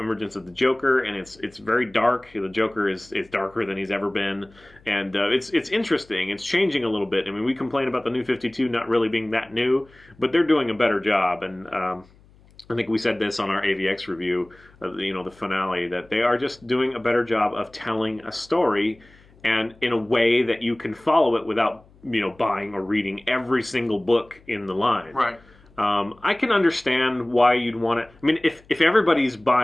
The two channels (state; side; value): noise; left; hum, 28 dB below the sound